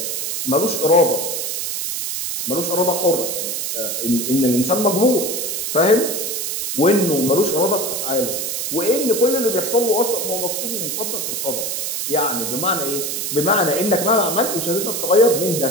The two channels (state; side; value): noise; right; hiss, 2 dB below the sound